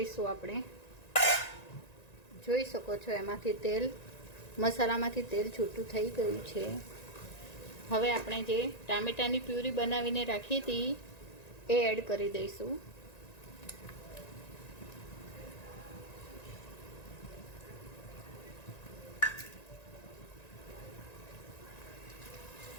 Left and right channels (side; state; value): right; late; 1.9 ms